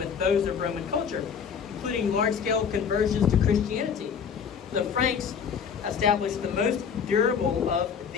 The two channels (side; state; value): right; quieter; 6.9 dB